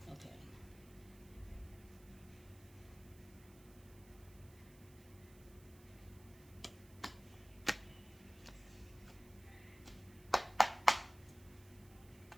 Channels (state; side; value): noise; right; hiss, 23 dB below the sound